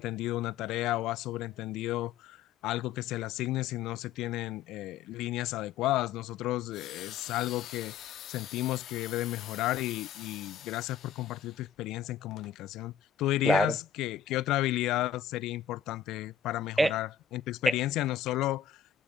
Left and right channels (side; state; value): right; quieter; 8.2 dB